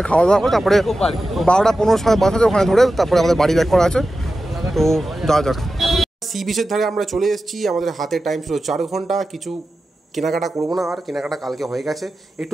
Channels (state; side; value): normal; both; correlation 0.93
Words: খাওয়া দাওয়া করে তারপরে 12টা 15 সময় বাস আছে, ওখানে ধরে তারপরে আমাদের বাড়ি ব্যাক করা আছে। তো যাওয়া যাক। সি বিচের ধারে আমরা চলে এসেছি, আমাদের হাতে টাইম ছিল 4 ঘন্টা। কিছু কেনাকাটা করবো না, আর কেনাকাটা কালকে হয়ে গেছে।